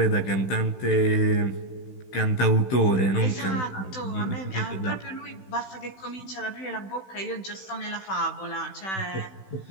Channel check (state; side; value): late; right; 16 ms